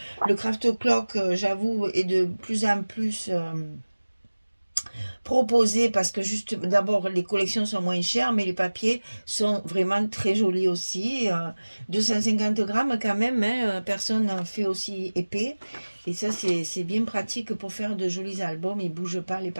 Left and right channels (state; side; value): inverted; both; correlation -1.00